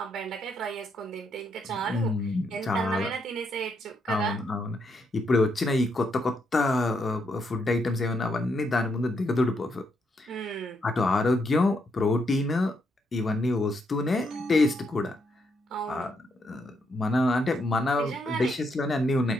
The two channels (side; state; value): both; normal; correlation 0.78